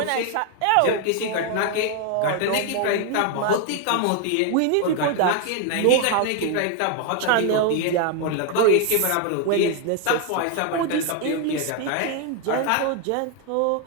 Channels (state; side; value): different; both; correlation 0.01